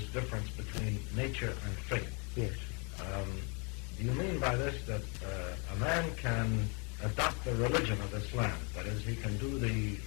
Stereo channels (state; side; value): quieter; right; 34.4 dB